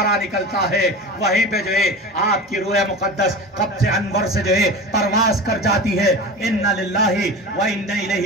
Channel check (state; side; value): normal; both; correlation 0.31